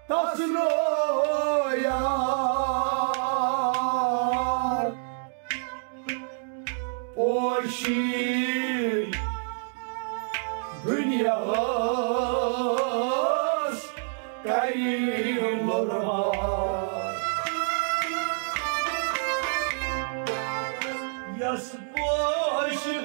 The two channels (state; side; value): silent; left; digital silence